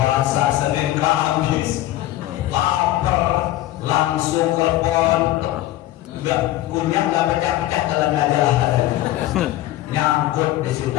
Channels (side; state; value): right; quieter; 15.0 dB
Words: Senin Kamis, lapar, langsung kelepon, nggak kunyah, nggak pecah-pecah dalam majalah, nyangkut di